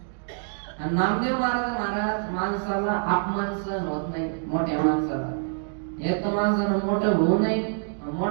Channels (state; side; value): silent; left; digital silence